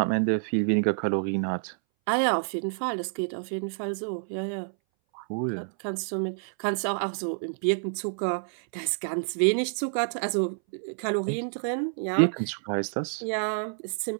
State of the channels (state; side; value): silent; left; 59 dB below the other